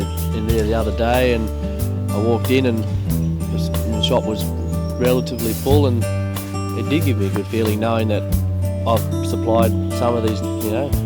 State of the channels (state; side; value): identical; both; correlation 1.00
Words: there the other day and I walked in and the shop was relatively full, and it did give me a good feeling knowing that I've supplied some of these,